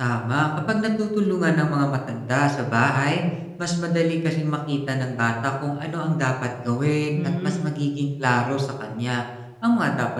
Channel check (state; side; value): identical; both; correlation 1.00